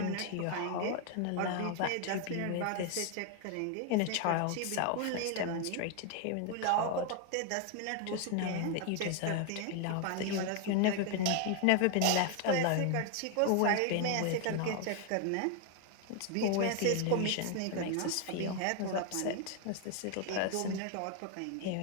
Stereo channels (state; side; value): different; both; correlation 0.00